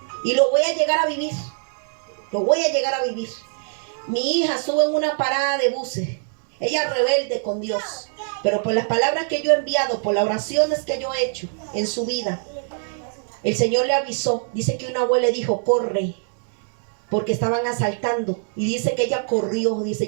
Y lo voy a llegar a vivir. Lo voy a llegar a vivir. Mi hija sube en una parada de buses. Ella rebelde con Dios. Pero por las palabras que yo he enviado, por las oraciones que yo he hecho en su vida, el Señor le avisó. Dice que una abuela le dijo, corre, porque estaban asaltando. Y dice que ella corrió. Dice,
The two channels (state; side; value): silent; left; 62 dB below the other